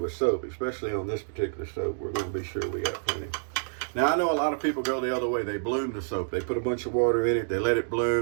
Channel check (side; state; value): left; silent; digital silence